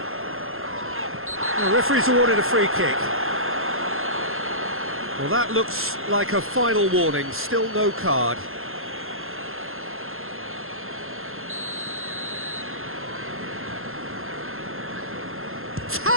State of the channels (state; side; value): late; left; 0.61 ms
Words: The referee's awarded a free kick. Well, that looks like a final warning. Still no card.